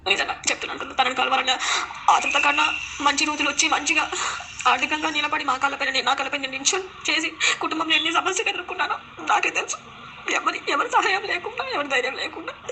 నిజంగా చెప్తున్నాను, తనని కలవాలన్న ఆతృత కన్నా మంచి రోజులు వచ్చి మంచిగా ఆర్థికంగా నిలబడి నా కాళ్ళపై నేను నిల్చొని చేసి కుటుంబంలో ఎన్ని సమస్యలు ఎదుర్కొన్నానో నాకే తెలుసు. ఎవరి సహాయం లేకుండా, ఎవరి ధైర్యం లేకుండా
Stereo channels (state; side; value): identical; both; correlation 1.00